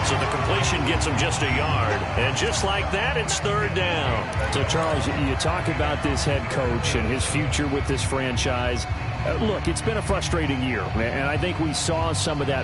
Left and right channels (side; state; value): both; identical; correlation 1.00